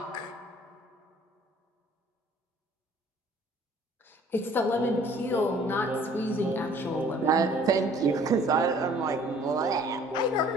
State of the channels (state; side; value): normal; both; correlation 0.54